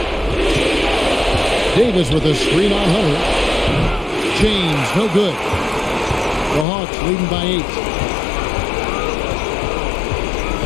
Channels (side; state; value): right; drops out; at 6.7 s